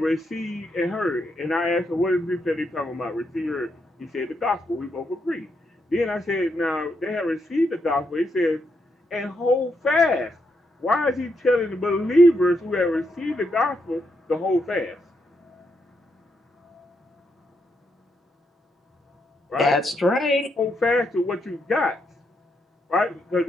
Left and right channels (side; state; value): both; normal; correlation 0.80